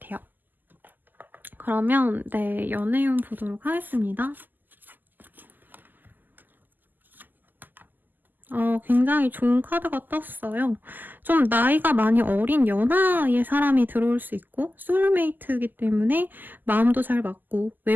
그러면 네, 연애운 보도록 하겠습니다. 굉장히 좋은 카드가 떴어요. 좀 나이가 많이 어린 연하의 사람이 들어올 수 있고 소울메이트이기 때문에 마음도 잘 맞고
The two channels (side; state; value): left; late; 0.087 ms